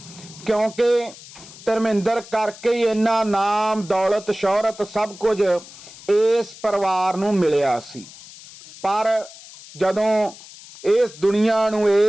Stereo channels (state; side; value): noise; left; hiss, 18 dB below the sound